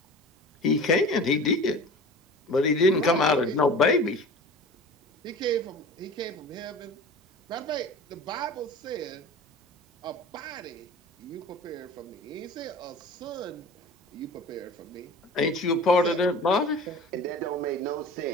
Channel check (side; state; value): both; normal; correlation 0.38